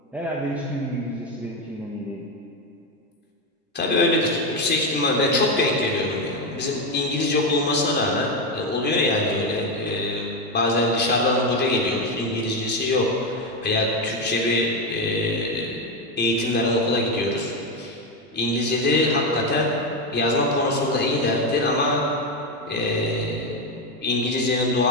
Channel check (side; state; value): both; normal; correlation 0.10